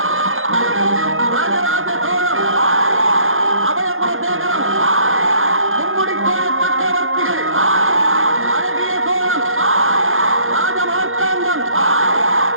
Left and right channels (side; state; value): left; late; 0.60 ms